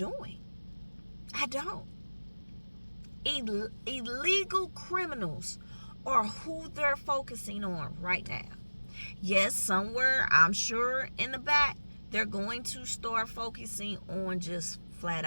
I don't. Illegal criminals are who they're focusing on right now. Yes, somewhere, I'm sure in the back, they're going to start focusing on just flat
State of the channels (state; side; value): inverted; both; correlation -1.00